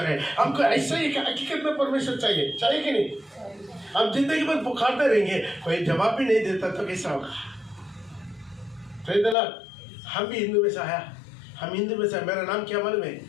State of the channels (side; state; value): right; drops out; at 9.3 s